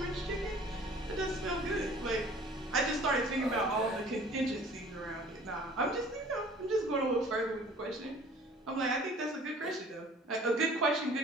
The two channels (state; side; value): normal; both; correlation 0.50